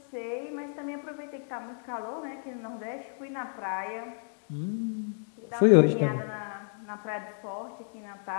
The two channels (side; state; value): right; silent; digital silence